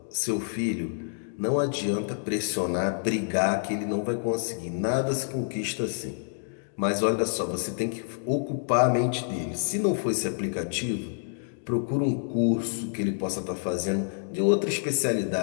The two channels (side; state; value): right; silent; digital silence